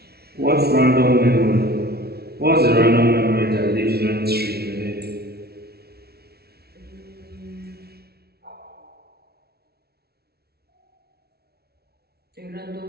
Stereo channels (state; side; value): late; left; 0.46 ms